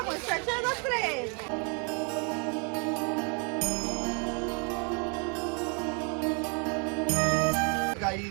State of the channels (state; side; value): quieter; left; 36.2 dB